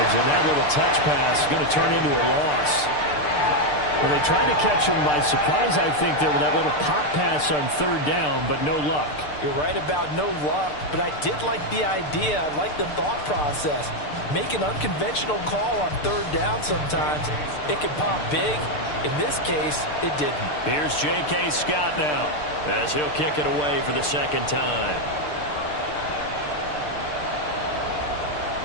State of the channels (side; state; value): right; late; 6.7 ms